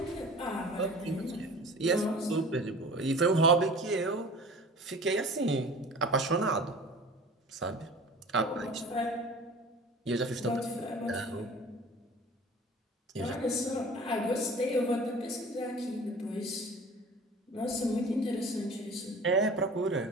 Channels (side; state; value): both; normal; correlation 0.41